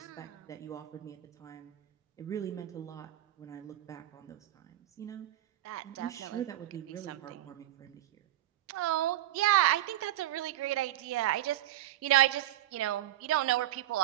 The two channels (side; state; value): left; quieter; 14.2 dB